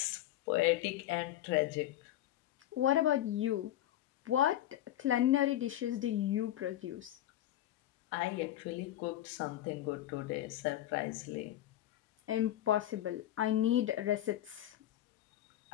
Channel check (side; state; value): right; quieter; 13.2 dB